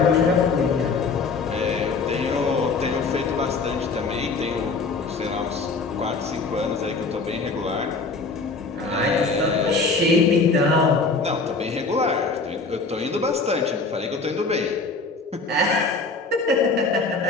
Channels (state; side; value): quieter; right; 4.1 dB